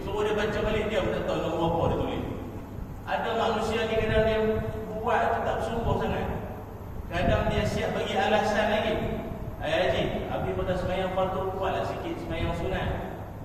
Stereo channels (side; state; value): both; identical; correlation 1.00